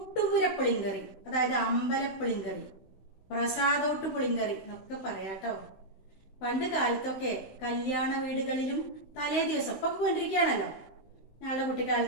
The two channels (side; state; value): right; late; 16 ms